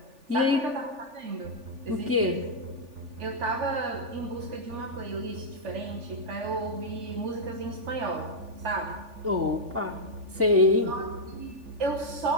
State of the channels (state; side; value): late; left; 3.4 ms